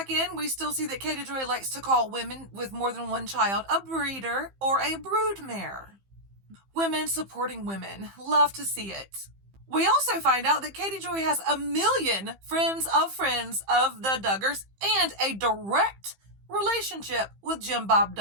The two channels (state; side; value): late; left; 15 ms